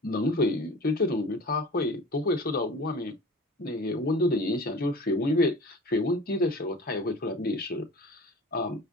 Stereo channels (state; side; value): normal; both; correlation 0.41